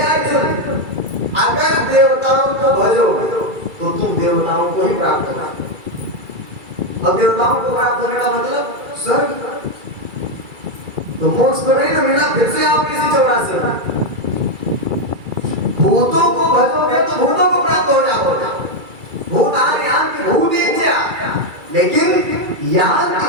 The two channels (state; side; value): late; left; 2.3 ms